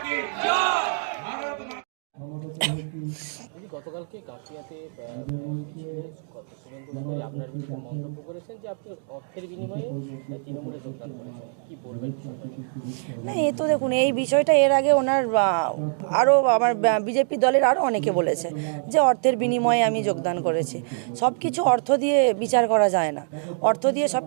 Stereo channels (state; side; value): silent; left; digital silence